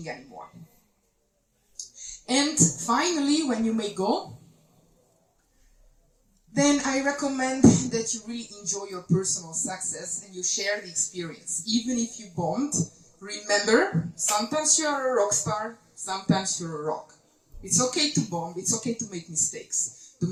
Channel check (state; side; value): identical; both; correlation 1.00